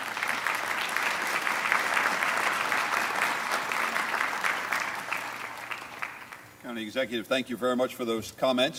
County Executive, thank you very much for those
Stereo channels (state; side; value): identical; both; correlation 1.00